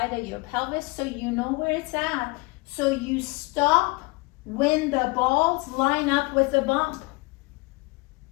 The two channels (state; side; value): quieter; right; 25.7 dB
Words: of your pelvis so you know where it's at. So you stop when the balls line up with the bump.